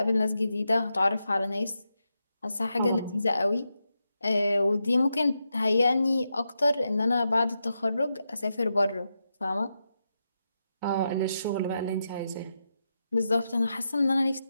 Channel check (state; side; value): inverted; both; correlation -0.87